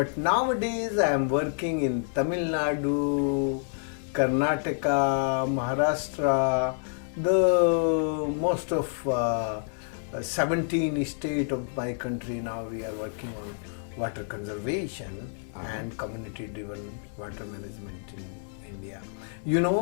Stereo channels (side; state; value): right; silent; digital silence